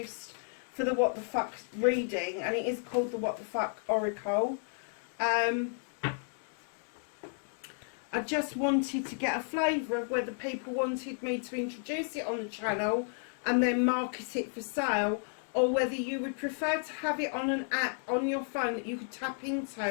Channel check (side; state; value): right; silent; 56 dB below the other